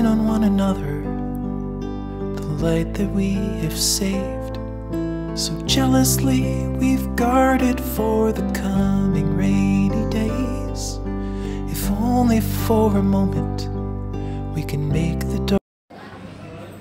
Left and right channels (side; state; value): both; identical; correlation 1.00